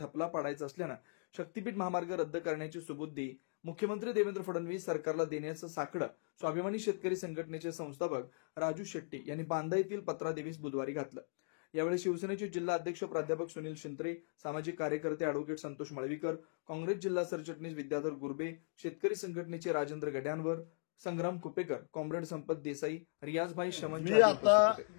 पाडायचा असल्यानं शक्तीपीठ महामार्ग रद्द करण्याची सुबुद्धी मुख्यमंत्री देवेंद्र फडणवीस सरकारला देण्याचं साकडं स्वाभिमानी शेतकरी संघटनेचे संस्थापक राजू शेट्टी यांनी बांदा येथील पत्रादेवीस बुधवारी घातलं. यावेळी शिवसेनेचे जिल्हा अध्यक्ष प्राध्यापक सुनील शिंत्रे, सामाजिक कार्यकर्ते अॅडव्होकेट संतोष मळवीकर, काँग्रेस जिल्हा सरचिटणीस विद्याधर गुरबे, शेतकरी संघटनेचे राजेंद्र गड्यांवर, संग्राम कुपेकर, कॉम्रेड संपत देसाई, रियाजभाई शमन. मी आता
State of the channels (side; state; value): right; silent; digital silence